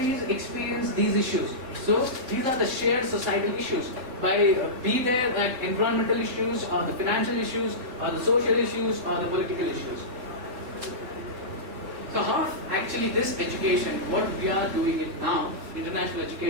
experience these issues. So these are the shared societal issues. Be there at environmental issues, or the financial issues, or the social issues, or the political issues. So how actually this education, what we are doing it now, international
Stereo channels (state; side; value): late; left; 3.7 ms